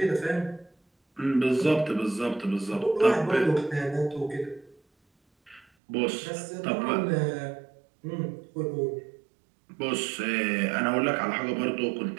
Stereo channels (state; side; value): drops out; left; at 5.7 s